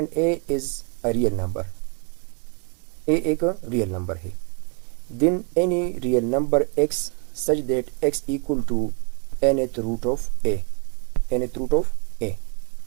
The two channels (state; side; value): quieter; left; 36.7 dB